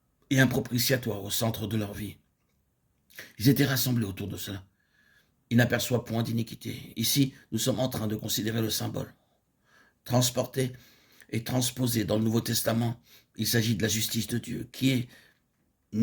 et un propitiatoire au centre de leur vie? Ils étaient rassemblés autour de cela. Il n'aperçoit point d'iniquité. Ici, nous sommes en train de considérer le symbole. Transporté et transposé dans le Nouveau Testament, il s'agit de la justice de Dieu, qui est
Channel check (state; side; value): identical; both; correlation 1.00